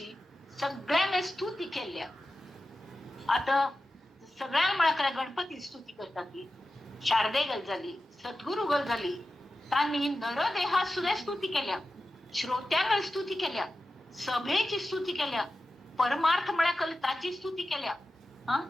सगळ्यांनी स्तुती केल्या. आता सगळ्या मळाकडे गणपती स्तुती करतात ती शारदे गल झाली, सद्गुरु गल झाली, त्यांनी नरदेहा सुद्धा स्तुती केल्या, श्रोत्यांना स्तुती केल्या, सभेची स्तुती केल्या, परमार्थ मळ्याकल ताची स्तुती केल्या.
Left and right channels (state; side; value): normal; both; correlation 0.93